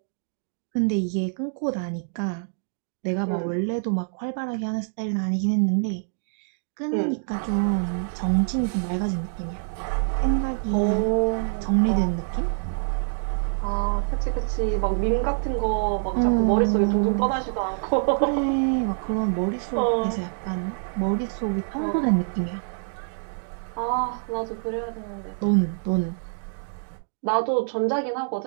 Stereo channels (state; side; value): silent; left; digital silence